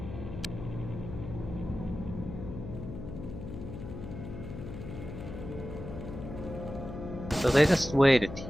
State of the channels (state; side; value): noise; left; hum, 9 dB below the sound